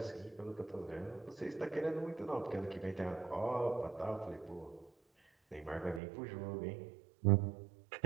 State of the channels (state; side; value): drops out; left; at 6.0 s